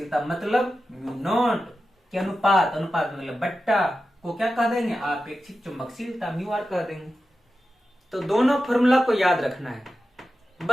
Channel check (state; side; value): normal; both; correlation 0.92